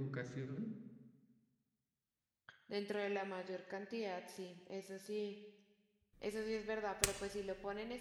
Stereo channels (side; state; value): both; identical; correlation 1.00